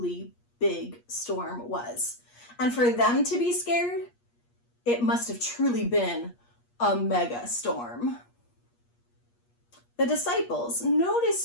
big storm was. And for them to be scared, it must have truly been a mega storm. The disciples,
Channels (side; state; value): right; late; 8.4 ms